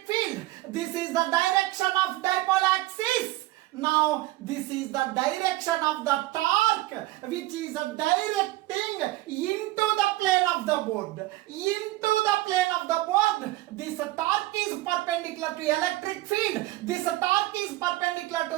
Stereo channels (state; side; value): quieter; left; 18.1 dB